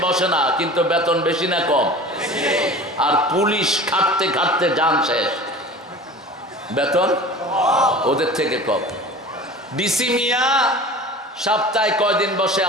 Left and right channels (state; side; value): normal; both; correlation 0.39